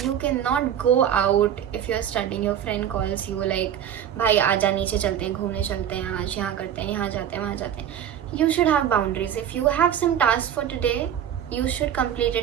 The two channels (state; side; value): quieter; left; 9.7 dB